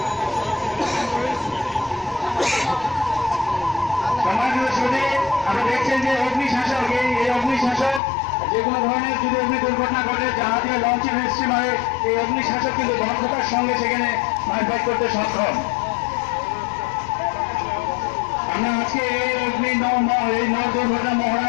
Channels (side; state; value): right; drops out; at 8.0 s